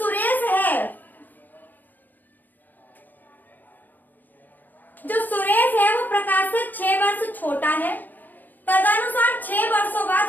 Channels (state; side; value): late; right; 0.086 ms